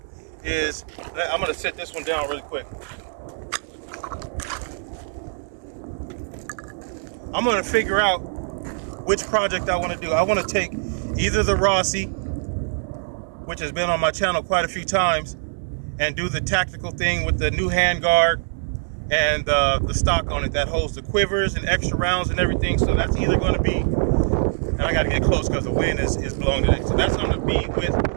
is, I'm gonna set this one down really quick. I'm gonna figure out which project I want to do. I want to take either the Rossi, which has been on my channel quite a few times, and do the tactical thing with the new handguard and the stock on it that holds the quivers and extra rounds and everything. So that's either going to be, and I got to get close because the wind is blowing today. So that's going to be with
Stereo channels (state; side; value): silent; left; digital silence